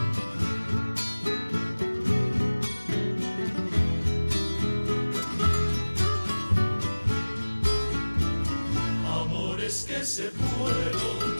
Que se fueron,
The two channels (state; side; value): inverted; both; correlation -1.00